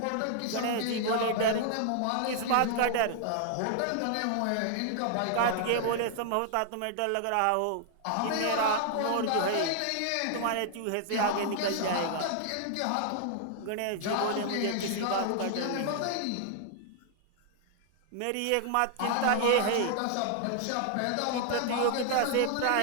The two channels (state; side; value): different; both; correlation 0.00